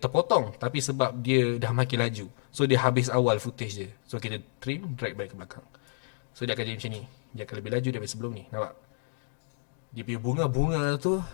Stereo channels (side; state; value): right; silent; digital silence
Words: tapi sebab dia dah makin laju. So dia habis awal footage dia. So kita trim, drag balik ke belakang. So dia akan jadi macam ni. Dia akan lebih laju daripada sebelum ni. Nampak? Dia punya bunga-bunga tu,